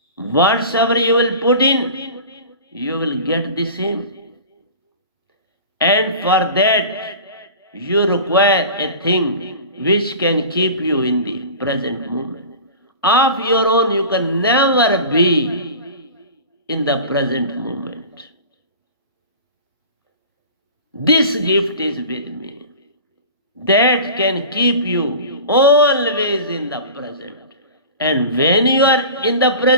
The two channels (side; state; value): both; inverted; correlation -0.37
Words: Whatsoever you will put in, you will get the same. And for that, you require a thing which can keep you in the present moment. Of your own, you can never be in the present moment. This gift is with me. That can keep you always in the present. And when you are in the